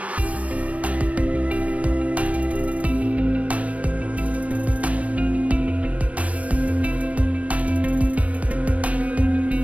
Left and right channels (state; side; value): late; left; 0.065 ms